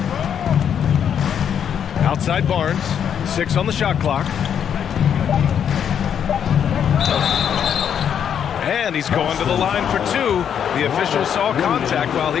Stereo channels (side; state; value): right; quieter; 8.5 dB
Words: Outside Barnes. 6 on the shot clock. And he's going to the line for 2. The official saw contact while